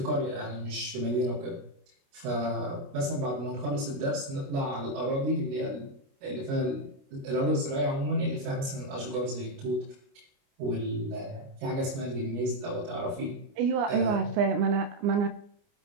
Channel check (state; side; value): late; left; 29 ms